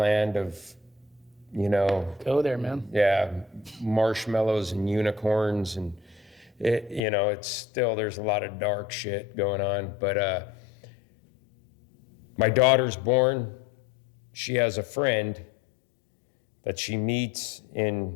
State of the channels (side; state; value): right; drops out; at 7.0 s